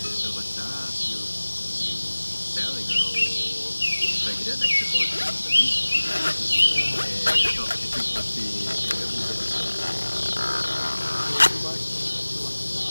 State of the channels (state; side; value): inverted; both; correlation -1.00